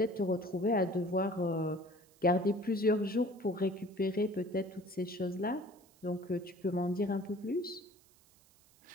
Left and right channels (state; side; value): noise; right; hiss, 29 dB below the sound